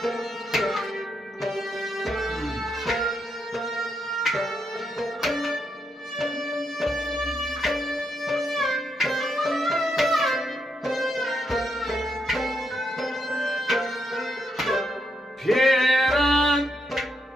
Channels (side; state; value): both; normal; correlation 0.80